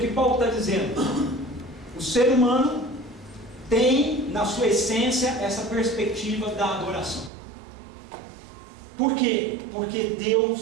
Paulo está dizendo. O ser humano tem na sua essência essa perspectiva da adoração. Por quê? Porque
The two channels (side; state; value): left; drops out; at 7.3 s